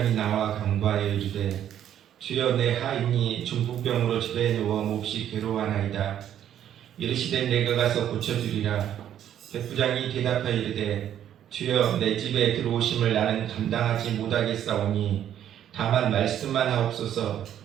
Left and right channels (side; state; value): left; quieter; 10.5 dB